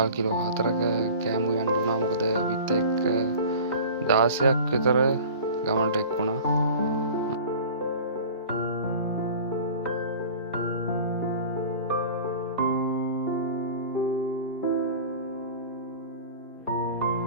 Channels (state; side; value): inverted; both; correlation -0.41